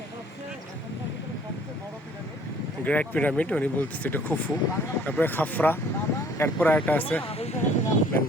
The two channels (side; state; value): both; normal; correlation 0.56